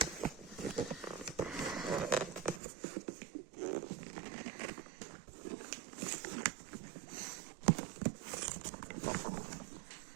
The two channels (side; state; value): left; drops out; at 2.6 s